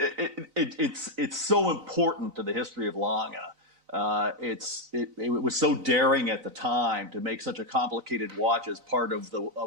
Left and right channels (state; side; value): late; left; 3.5 ms